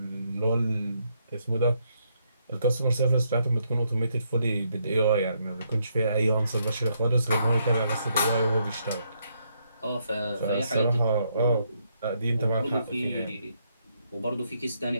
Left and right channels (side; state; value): both; inverted; correlation -0.75